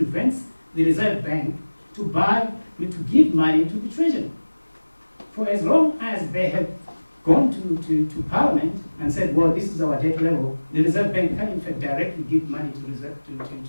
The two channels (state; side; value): inverted; both; correlation -1.00